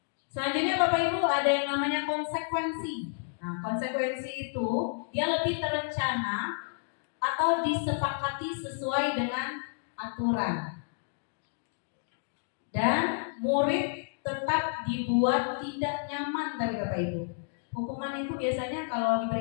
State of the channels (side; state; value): right; silent; digital silence